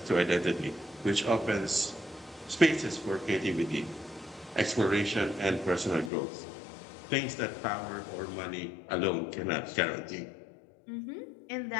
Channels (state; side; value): drops out; right; at 6.1 s